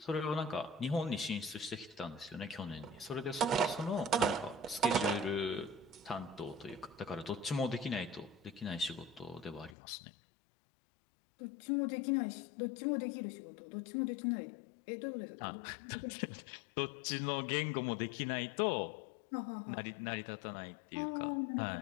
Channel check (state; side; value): drops out; right; at 9.8 s